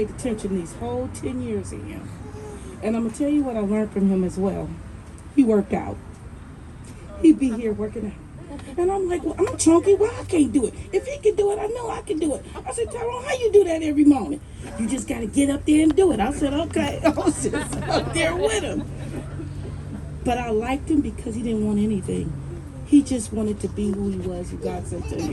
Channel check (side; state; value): both; identical; correlation 1.00